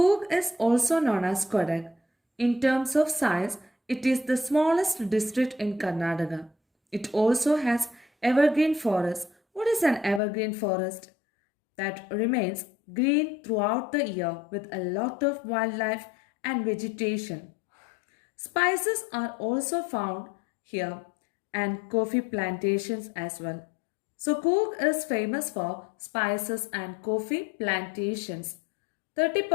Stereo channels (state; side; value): drops out; right; at 10.2 s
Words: is also known as Kodag. In terms of size, it is the smallest district in Karnataka. It also has evergreen forest. What is an evergreen forest? That remains green throughout the year with a lot of wildlife and vegetation. Spices are also found here and coffee plantations as well. So Coorg is famous for spices and coffee plantations.